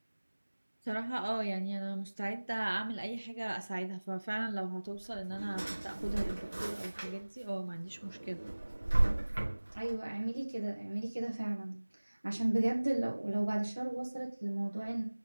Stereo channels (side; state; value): both; inverted; correlation -1.00